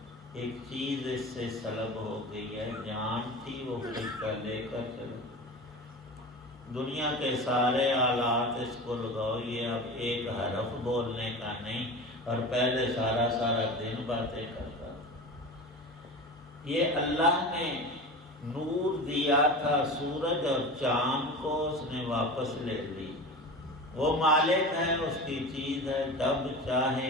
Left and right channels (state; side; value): normal; both; correlation 0.31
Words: ایک چیز اس سے سلب ہو گئی ہے، جان تھی وہ فرشتہ لے کر چلا۔ دنیا کے سارے آلات اس کو لگاؤ، یہ اب ایک حرف بولنے کا نہیں، اور پہلے سارا دن باتیں کرتا تھا۔ یہ اللہ نے نور دیا تھا سورج اور چاند کو، اس نے واپس لے لی۔ وہ مالک ہے، اس کی چیز ہے، جب